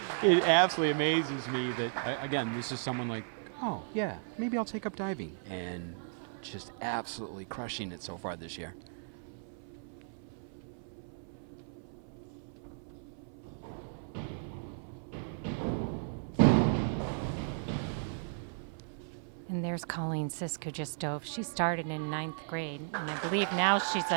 absolutely amazes me that, again, this is someone like, oh, yeah, maybe I'll take up diving. And just absolutely crushing it so far this year. And there's Colleen Sisk, who just dove. She started in 9th grade, and I believe now she's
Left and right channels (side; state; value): left; silent; 54 dB below the other